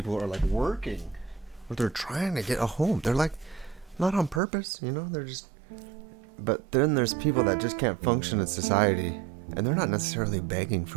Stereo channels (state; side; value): drops out; left; at 4.4 s